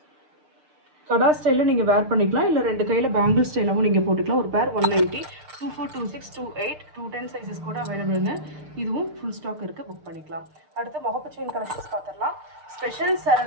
கடா ஸ்டைலில் நீங்கள் வேர் பண்ணிக்கலாம், இல்லை 2 கையில் பேங்கிள் ஸ்டைலாகவும் நீங்கள் போட்டுக்கலாம். ஒரு பேர் 190, 24, 26, 28, 210 சைஸஸ் கூட அவைலபிளுங்க. இதுவும் ஃபுல் ஸ்டாக் இருக்குது, புக் பண்ணிக்கலாம். அடுத்து முகப்பு செயின் கலெக்ஷன்ஸ் பார்த்துடலாம். ஸ்பெஷல்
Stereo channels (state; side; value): late; left; 6.6 ms